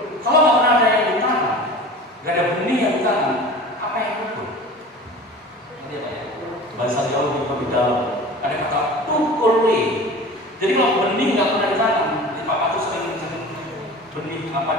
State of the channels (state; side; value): normal; both; correlation 0.38